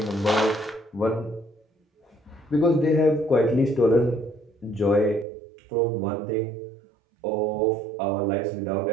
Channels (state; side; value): drops out; left; at 5.2 s